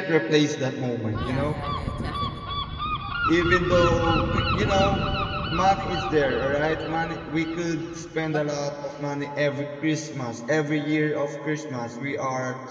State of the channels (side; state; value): both; identical; correlation 1.00